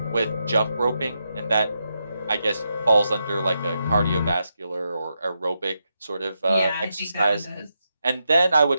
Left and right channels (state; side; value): inverted; both; correlation -0.85